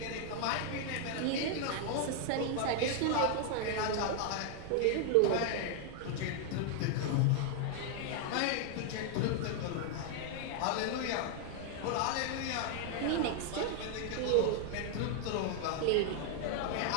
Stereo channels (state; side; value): different; both; correlation 0.00